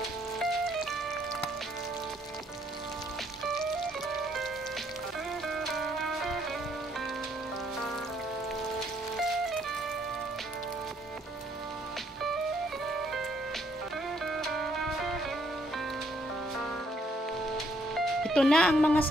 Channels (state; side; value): normal; both; correlation 0.69